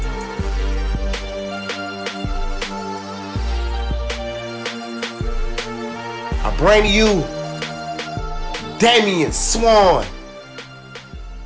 I bring to you Damian Swann.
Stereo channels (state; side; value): identical; both; correlation 1.00